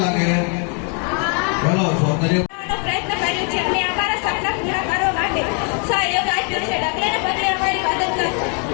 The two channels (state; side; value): quieter; right; 37.5 dB